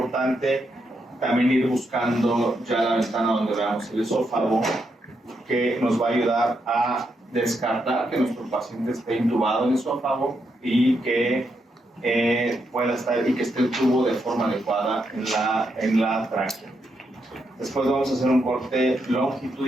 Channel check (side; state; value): both; normal; correlation 0.81